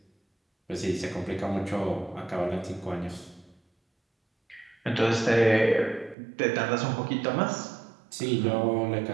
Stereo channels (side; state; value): left; drops out; at 6.2 s